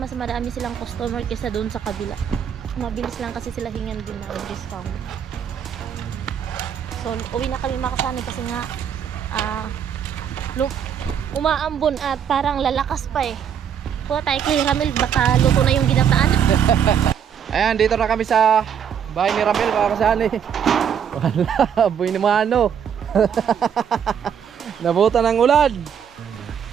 marami silang customer kaysa doon sa kabila. Mabilis lang kasi sila hingan din ng discount. So, uwi na kami mga kasani kasi nga umaambon at parang lalakas pa eh. Kuha tayo kay Ramel, baka luto na yung ginataan. Ayan, dito na kami sa bahay ni Ramel, mga kasani. Wala, boy ni Mano. Nabutan ng ulan.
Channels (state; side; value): quieter; left; 8.2 dB